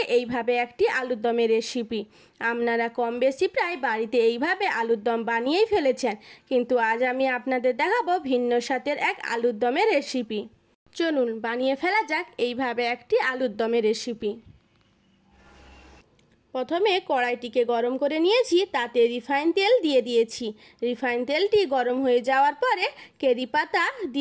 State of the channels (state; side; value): identical; both; correlation 1.00